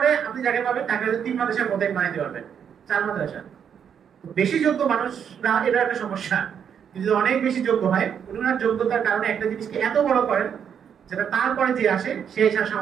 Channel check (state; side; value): quieter; left; 7.9 dB